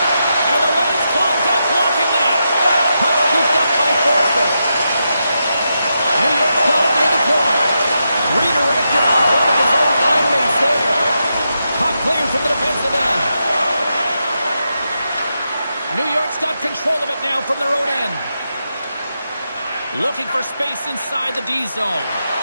the lane's clogged up, blocking that. Puck scooped up by Forsberg. New York's got it near the point. Redirected off one of his own line mates there. Puck cleared from the defensive end. New York's got control of it now from their own end. Looking for space inside the D zone.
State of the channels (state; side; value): inverted; both; correlation -0.86